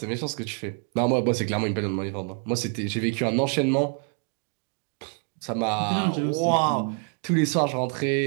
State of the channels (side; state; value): left; quieter; 37.1 dB